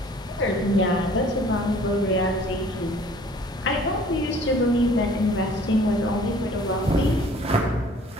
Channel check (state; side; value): normal; both; correlation 0.52